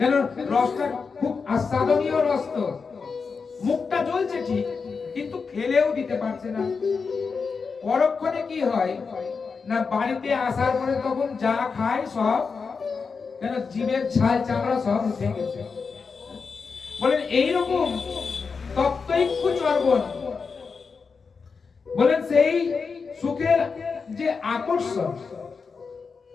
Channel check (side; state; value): right; quieter; 5.1 dB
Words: রসটা খুব আস্বাদনীয় রস, তো মুখটা জ্বলছে ঠিক, কিন্তু খেলেও দিতে পারছে না। পরক্ষণে কি হয় না, বাড়িতে আসার পরে তখন যা খায় সব কেন জীবের ছাল চামড়া সব উঠে গেছে। বলেন এইরকম তপ্তৈক্য চর্বণ, বলেন সেই সুখের যে আকর্ষণ,